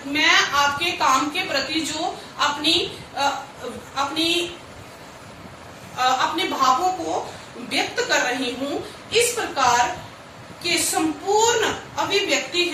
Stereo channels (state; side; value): identical; both; correlation 1.00